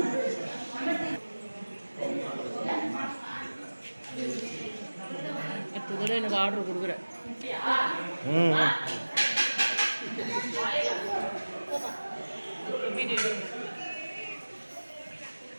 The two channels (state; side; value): inverted; both; correlation -1.00